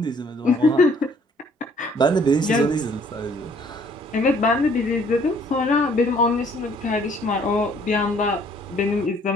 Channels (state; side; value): normal; both; correlation 0.60